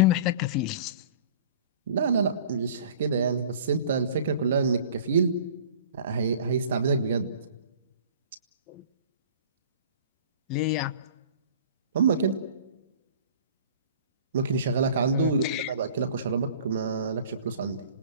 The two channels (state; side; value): inverted; both; correlation -0.44